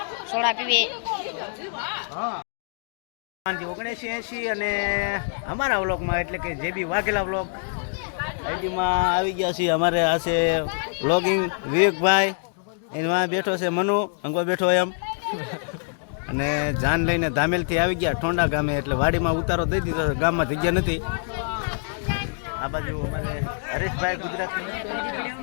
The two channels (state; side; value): silent; right; digital silence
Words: સોડા પીવે 1980 અને અમારા વ્લોગમાં એટલે કે જેબી વાઘેલા વ્લોગ આઈડીમાં આવી ગયા છીએ. અમારે આ છે વ્લોગિંગ વિવેકભાઈ, એમાં બેઠો છે મનુ અંગો બેઠો એમ, અને જાન લઈને ધામેલથી આવી ગયા ઠોંડા ગામે, એટલે વાડીમાં ઉતારો દઈ દીધો, ગામમાં જગ્યા નથી. આ બાજુ અમારે હરેશભાઈ ગુજરાતી,